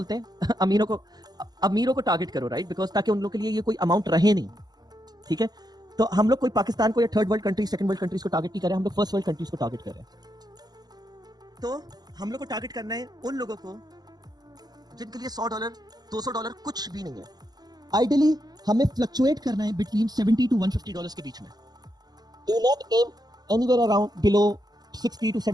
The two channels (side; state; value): left; late; 0.19 ms